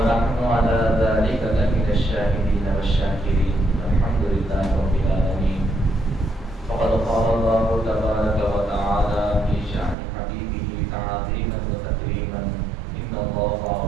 على ذلك لمن الشاهدين والشاكرين. الحمد لله رب العالمين. فقد قال الله تبارك وتعالى في شأن حبيبه تعظيما وتكريما: إن الله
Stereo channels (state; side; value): drops out; left; at 10.0 s